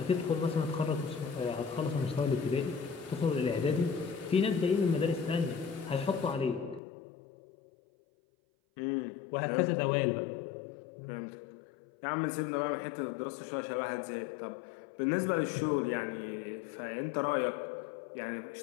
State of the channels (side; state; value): right; drops out; at 6.8 s